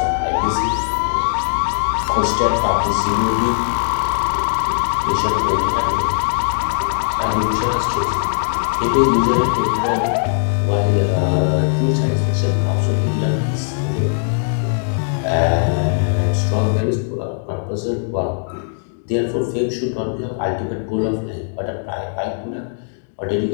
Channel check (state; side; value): silent; right; digital silence